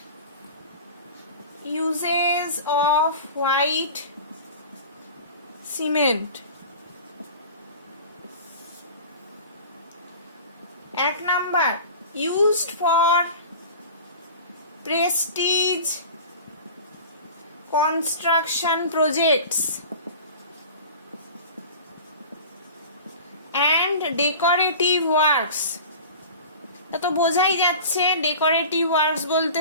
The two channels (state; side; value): inverted; both; correlation -0.38